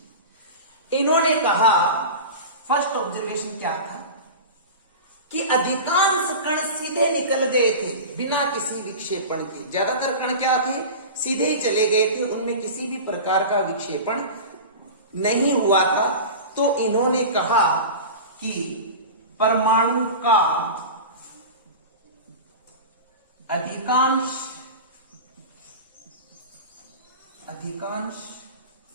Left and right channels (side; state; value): both; inverted; correlation -0.30